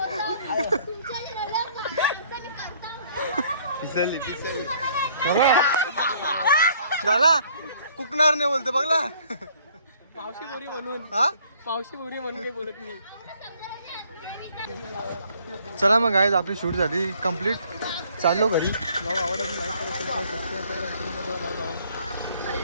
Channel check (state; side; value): inverted; both; correlation -0.61